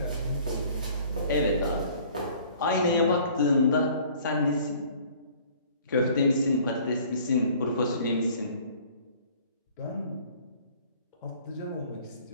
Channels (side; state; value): both; inverted; correlation -0.53